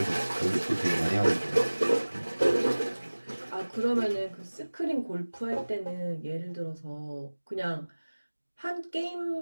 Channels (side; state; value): both; inverted; correlation -1.00